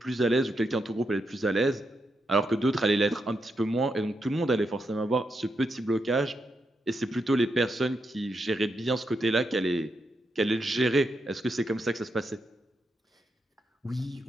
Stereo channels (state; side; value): normal; both; correlation 0.83